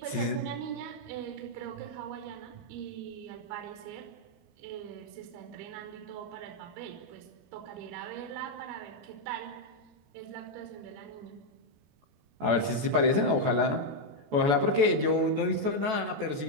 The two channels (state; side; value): late; left; 14 ms